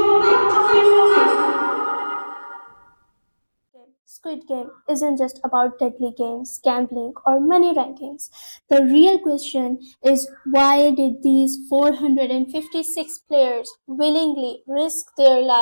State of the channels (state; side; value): inverted; both; correlation -1.00